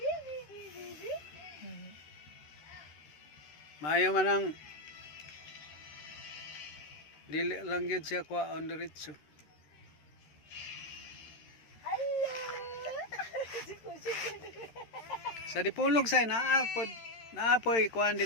Maayo man ang dili lang gyud siya kwa on diretso. Sa dipulog say naapoy kuan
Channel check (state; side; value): late; right; 13 ms